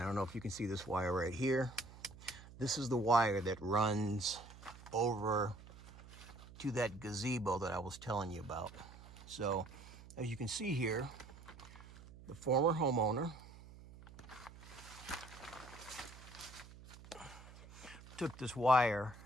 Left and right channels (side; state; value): right; noise; hum, 18 dB below the sound